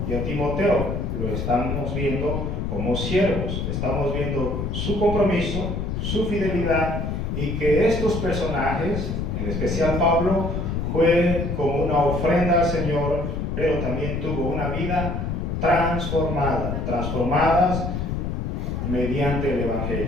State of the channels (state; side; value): noise; left; rumble, 2 dB below the sound